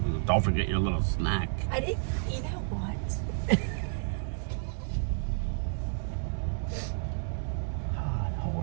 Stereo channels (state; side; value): silent; left; digital silence